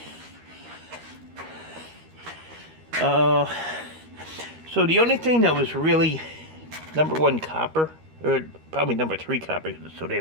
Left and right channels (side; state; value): left; late; 13 ms